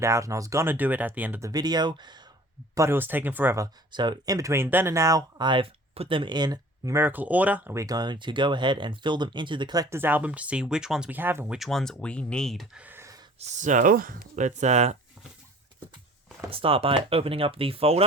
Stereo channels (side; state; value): both; normal; correlation 0.47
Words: out and I was gonna do it at the end of the video, but it was taking forever. So in between then and now, I've put them in numerical order and we're going to go ahead and fill them into the collector's album to see which ones we have and which ones we need. So, let's start by opening up the